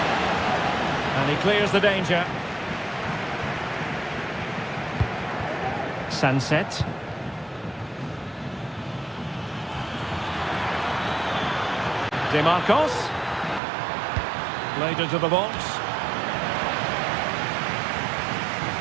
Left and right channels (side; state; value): left; drops out; at 13.6 s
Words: And he clears the danger. Sunset. DeMarcos. Played into the box.